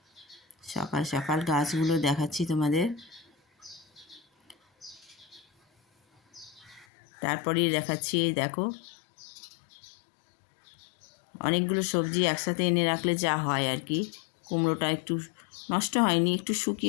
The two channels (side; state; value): right; drops out; at 6.9 s